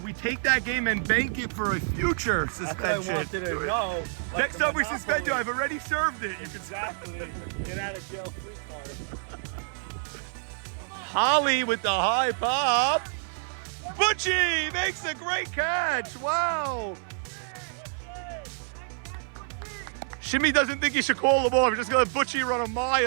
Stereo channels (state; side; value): silent; left; 56 dB below the other